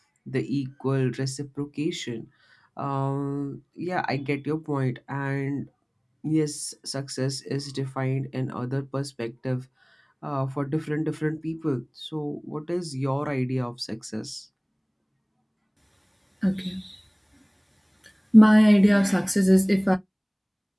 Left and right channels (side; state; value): both; identical; correlation 1.00